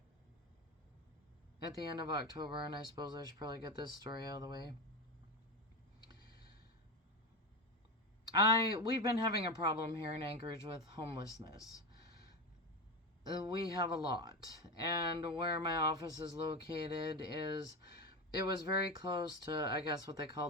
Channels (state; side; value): normal; both; correlation 0.19